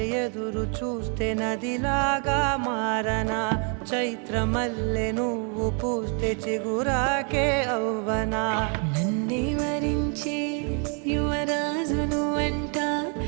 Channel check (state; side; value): quieter; left; 39.1 dB